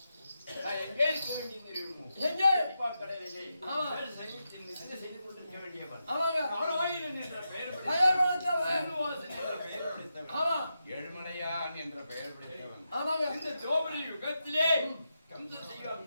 நான் எங்கே இருக்க வேண்டியது தெரியுமோ? எங்கே? அப்பா கடலிலே ஆமா. சைன்யத்தில் நிதிரை செய்து கொண்டிருக்க வேண்டியவன். ஆமாங்க. நாராயணன் என்ற பெயர் பெயர் படைத்தவன். சீனிவாசன் என்ற பெயர் படைத்தவன். ஆமா. ஏழுமலையான் என்ற பெயர் படைத்தவன். ஆமாங்க. இந்த துவாபர யுகத்திலே கம்சன் செய்ய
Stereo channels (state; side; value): inverted; both; correlation -0.87